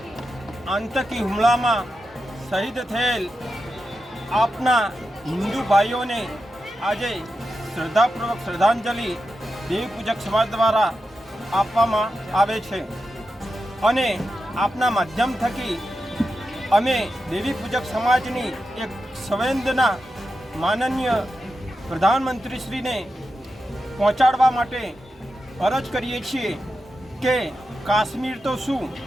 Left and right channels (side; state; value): both; normal; correlation 0.89